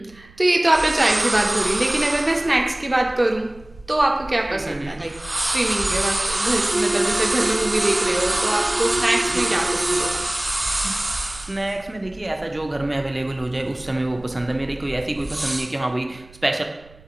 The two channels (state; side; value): noise; right; rumble, 25 dB below the sound